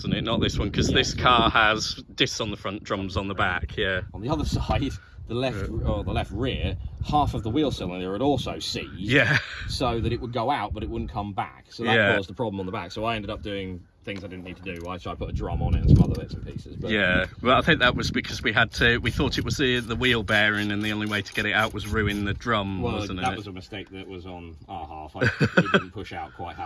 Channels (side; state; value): both; identical; correlation 1.00